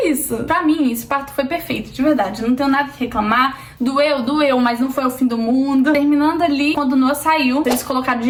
isso. Pra mim, esse parto foi perfeito, de verdade. Não tenho nada que reclamar. Doeu, mas não foi o fim do mundo. Terminando ali, quando o Noah saiu, eles colocaram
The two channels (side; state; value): both; identical; correlation 1.00